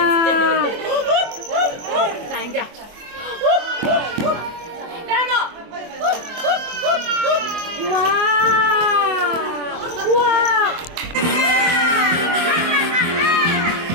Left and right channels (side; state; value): left; late; 24 ms